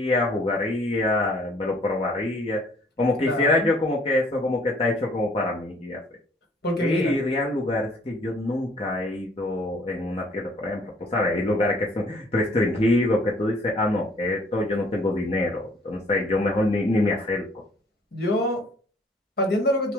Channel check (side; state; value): both; normal; correlation 0.59